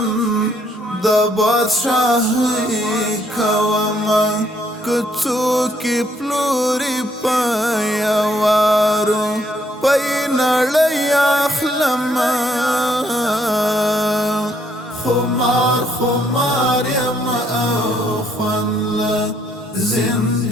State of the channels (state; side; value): normal; both; correlation 0.70